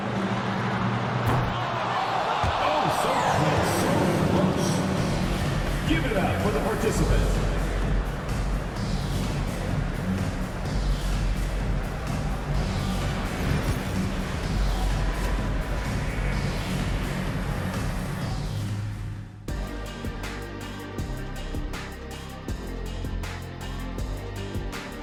Oh, so close, so close. Give it up for the participant.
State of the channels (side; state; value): both; identical; correlation 1.00